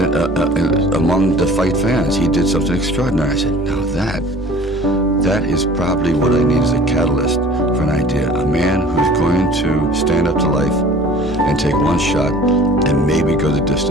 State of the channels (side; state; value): both; normal; correlation 0.47